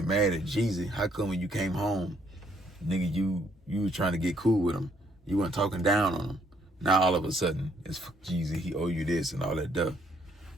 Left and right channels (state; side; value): normal; both; correlation 0.68